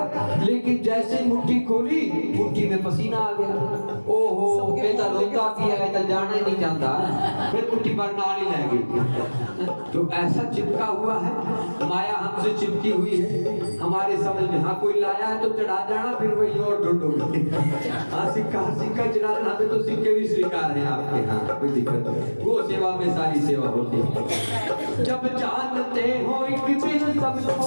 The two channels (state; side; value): inverted; both; correlation -1.00